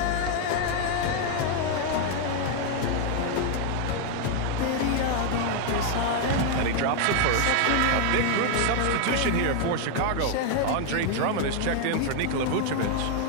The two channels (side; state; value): both; different; correlation 0.00